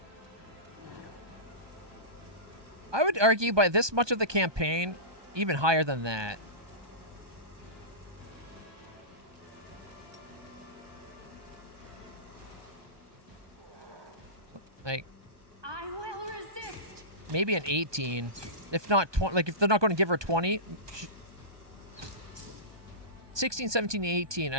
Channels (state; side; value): late; left; 1.2 ms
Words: I would argue by this much of the campaign, even higher than that. Like, I will resist. maybe an 18, if not 20. Like, if they're not going to give her 20, 16, 17, 18,